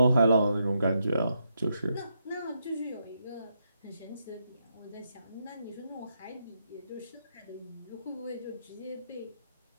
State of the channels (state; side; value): inverted; both; correlation -0.81